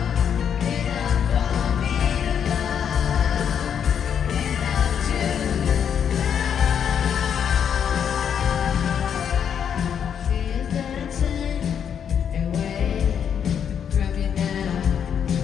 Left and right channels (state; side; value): quieter; right; 8.1 dB